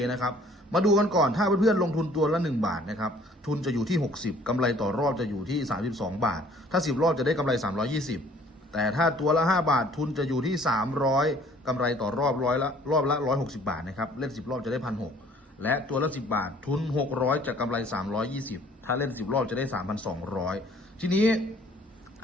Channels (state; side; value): normal; both; correlation 0.56